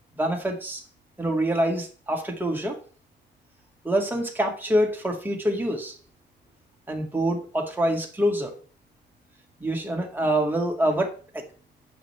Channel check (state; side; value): normal; both; correlation 0.78